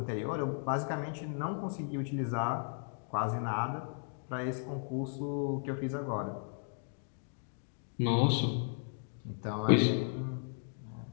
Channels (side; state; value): right; silent; digital silence